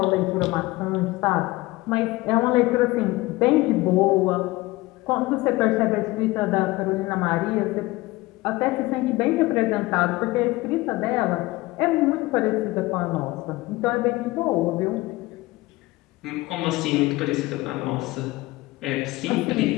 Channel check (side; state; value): right; quieter; 20.1 dB